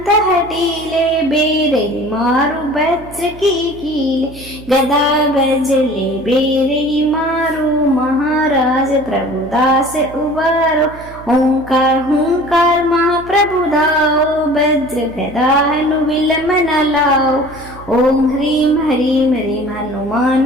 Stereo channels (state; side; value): noise; right; hum, 18 dB below the sound